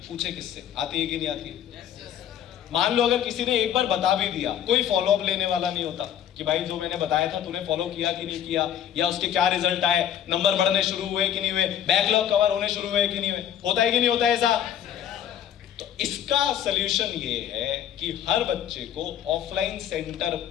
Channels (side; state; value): right; quieter; 9.9 dB